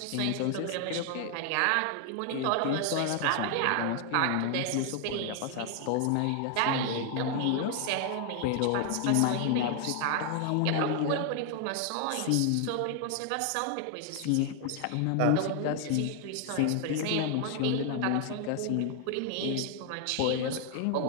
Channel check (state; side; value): different; both; correlation 0.00